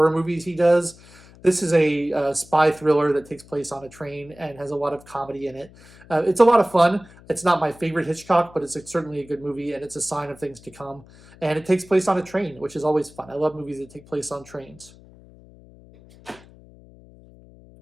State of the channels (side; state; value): left; noise; hum, 23 dB below the sound